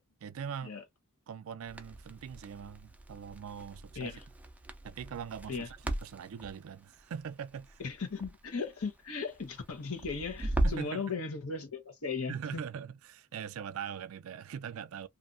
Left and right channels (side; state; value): both; normal; correlation 0.49